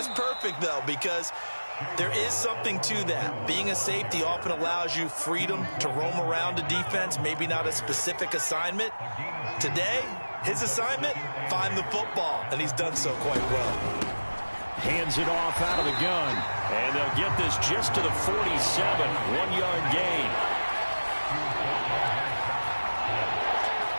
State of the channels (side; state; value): both; inverted; correlation -1.00